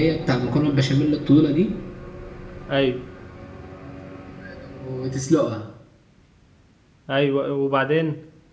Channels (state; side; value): identical; both; correlation 1.00